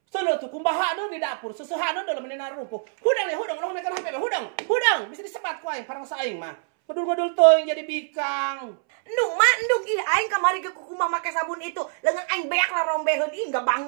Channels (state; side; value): silent; left; 62 dB below the other